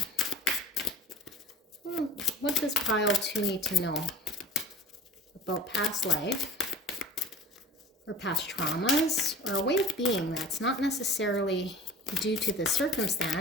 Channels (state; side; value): normal; both; correlation 0.42